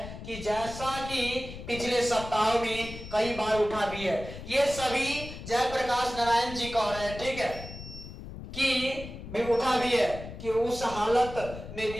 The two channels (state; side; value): noise; left; rumble, 11 dB below the sound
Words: कि जैसा कि पिछले सप्ताह में कई बार उठा भी है, ये सभी जयप्रकाश नारायण जी कह रहे हैं, ठीक है, कि भी उठा भी है कि उस हालत में